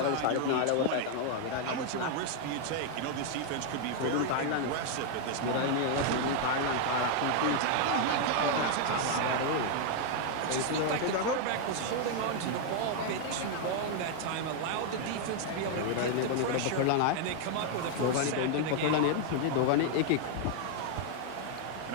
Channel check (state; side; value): different; both; correlation 0.00